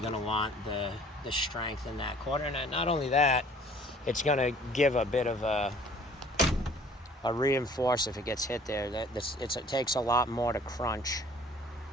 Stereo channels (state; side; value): normal; both; correlation 0.53